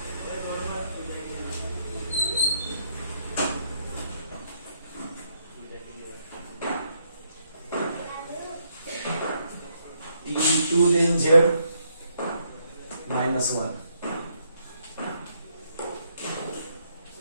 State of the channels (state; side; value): inverted; both; correlation -0.74